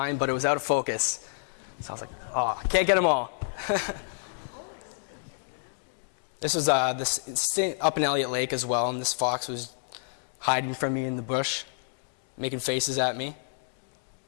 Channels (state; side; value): silent; right; digital silence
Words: but it was out of focus. So I was like, oh, I can't get them all. This was up in Elliott Lake as well, and this fox was hiding from me in the bush, making faces at me.